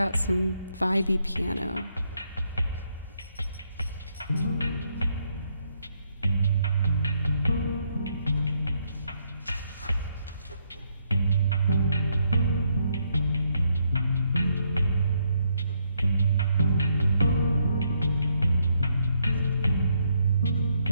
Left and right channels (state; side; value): inverted; both; correlation -0.75